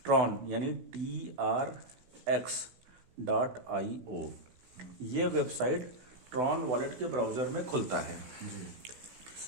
यानी TRX.io। ये वेबसाइट ट्रॉन वॉलेट के ब्राउज़र में खुलता है।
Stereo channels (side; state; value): left; late; 16 ms